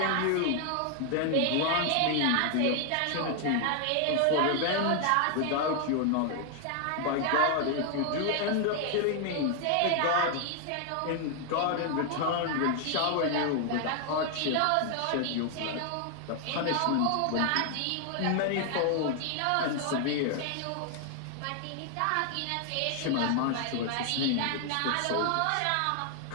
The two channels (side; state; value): both; different; correlation 0.00